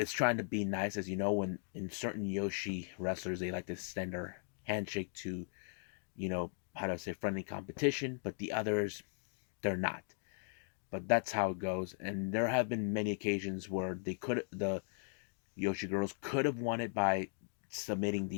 trying to be nice, as you know, when in certain Yoshi wrestlers, they like to extend their handshake to, how do I say, friendly competition, but the others, they're not. But that's how it goes. And there have been many occasions where the Yoshi girls could have won it by submitting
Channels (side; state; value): right; silent; 52 dB below the other